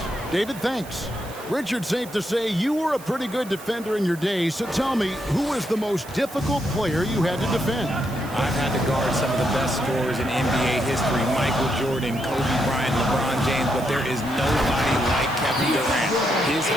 David, thanks. Richard, safe to say you were a pretty good defender in your day, so tell me, who was the most difficult player you had to defend? I've had to guard some of the best scorers in NBA history, Michael Jordan, Kobe Bryant, LeBron James, but there is nobody like Kevin Durant. His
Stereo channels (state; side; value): noise; right; hiss, 18 dB below the sound